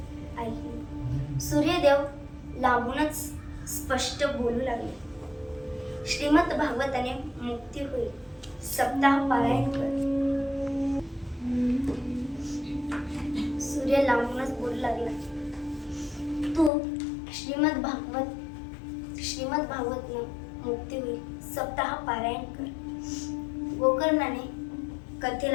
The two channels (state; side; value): drops out; right; at 16.7 s